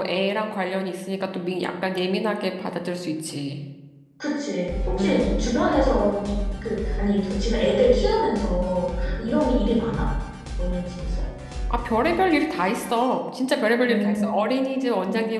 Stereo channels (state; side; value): identical; both; correlation 1.00